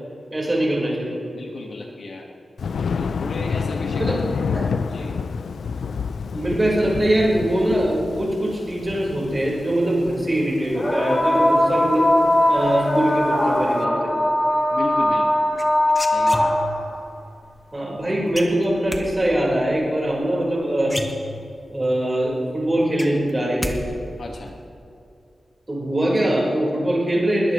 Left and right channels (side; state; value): both; normal; correlation 0.94